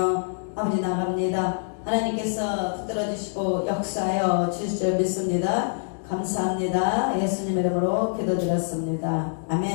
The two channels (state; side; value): silent; right; digital silence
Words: 아버지 나갑니다. 하나님께서 붙들어주시고 역사하여 주실 줄 믿습니다. 감사합니다. 예수님의 이름으로 기도드렸습니다.